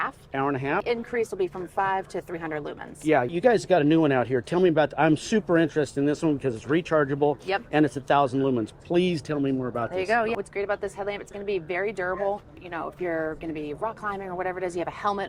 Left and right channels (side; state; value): both; identical; correlation 1.00